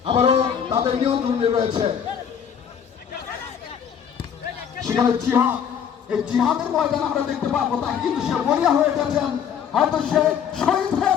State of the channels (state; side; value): quieter; right; 8.1 dB